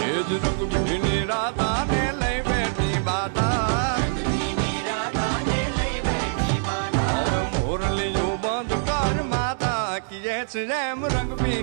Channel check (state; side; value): silent; left; digital silence